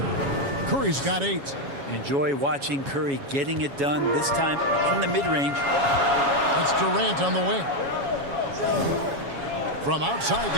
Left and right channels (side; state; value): left; late; 7.2 ms